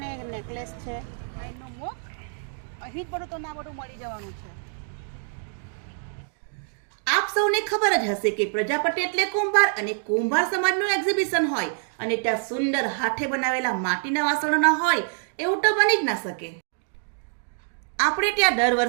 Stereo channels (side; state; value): left; silent; digital silence